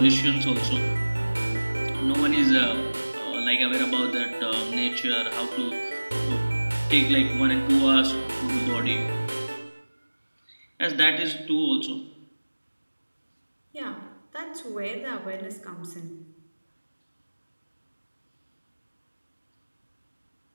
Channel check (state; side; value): inverted; both; correlation -1.00